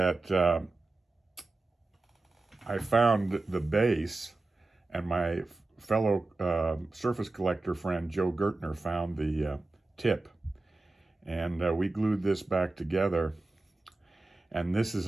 I found the base, and my fellow surface collector friend Joe Gertner found the tip. And we glued this back together. And this is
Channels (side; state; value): left; quieter; 3.3 dB